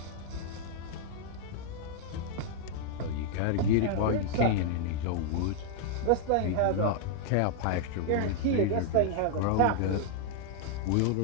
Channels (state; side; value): different; both; correlation 0.00